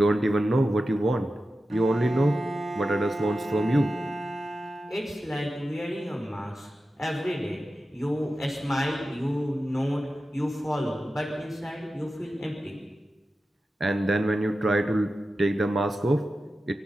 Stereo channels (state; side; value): normal; both; correlation 0.93